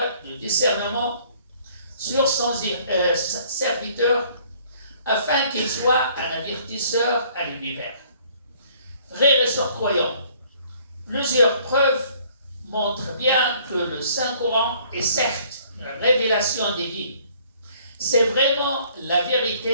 du discernement sur son serviteur afin qu'il soit un avertisseur à l'univers. Frères et sœurs croyants, plusieurs preuves montrent bien que le Saint-Coran est certes une révélation divine. C'est vraiment la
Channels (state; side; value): inverted; both; correlation -0.59